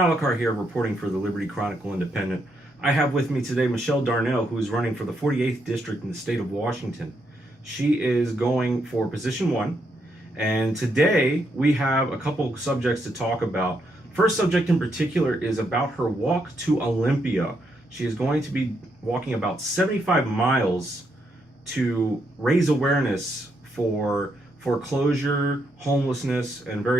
here, reporting for the Liberty Chronicle Independent. I have with me today Michelle Darnell, who is running for the 48th District in the state of Washington. She is going for position 1, and today we have a couple subjects to talk about. First subject in particular is about her walk to Olympia. She is going to be walking about 75 miles to raise awareness for foreclosure, homelessness, and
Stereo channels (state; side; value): normal; both; correlation 0.78